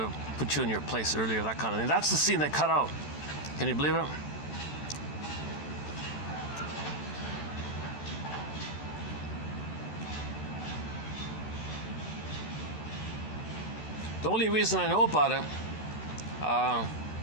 put you in your place earlier, that kind of thing. That's the scene they cut out. Can you believe it? The only reason I know about it,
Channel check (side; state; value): right; late; 13 ms